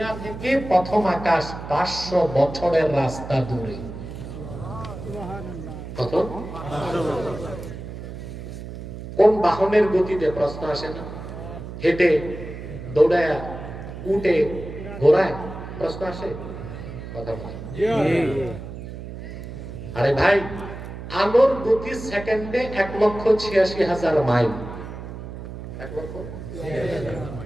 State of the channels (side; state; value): right; noise; hum, 10 dB below the sound